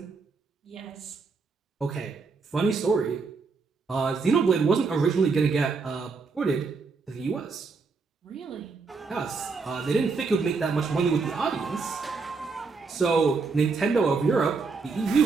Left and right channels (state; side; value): quieter; left; 4.6 dB